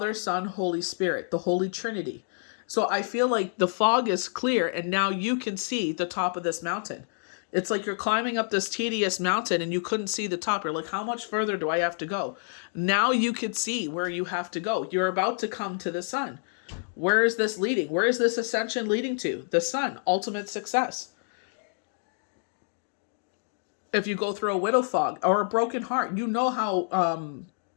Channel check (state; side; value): silent; right; digital silence